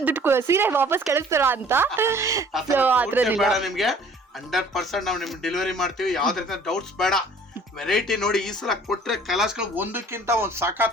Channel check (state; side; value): normal; both; correlation 0.53